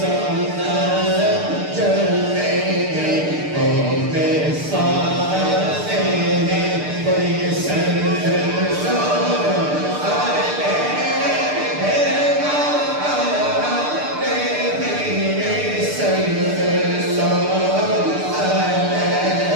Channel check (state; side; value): late; left; 6.7 ms